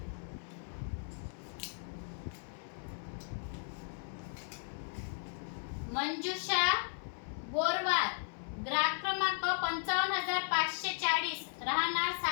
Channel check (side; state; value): right; silent; 54 dB below the other